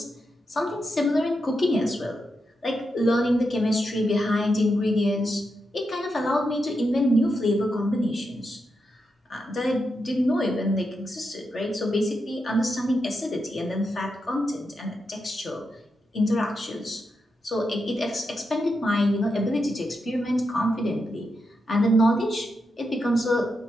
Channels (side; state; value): both; normal; correlation 0.85